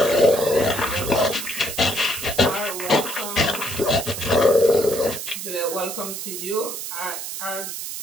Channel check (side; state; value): right; noise; hiss, 7 dB below the sound